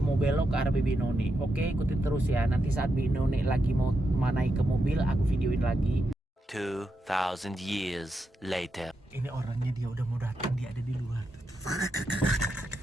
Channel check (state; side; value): normal; both; correlation 0.85